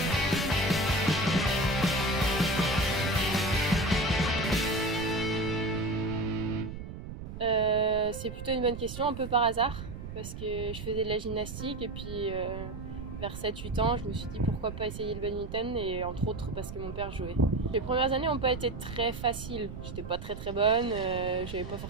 C'est plutôt une bonne question, un peu par hasard, parce que je faisais de la gymnastique et puis vers 7-8 ans je me suis dit pourquoi pas essayer le badminton et entre autres parce que mon père jouait. Les premières années n'ont pas été très faciles, j'étais pas très bonne, j'avais pas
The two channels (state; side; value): noise; right; rumble, 9 dB below the sound